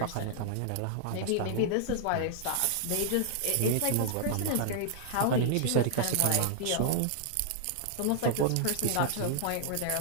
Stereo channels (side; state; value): both; different; correlation -0.01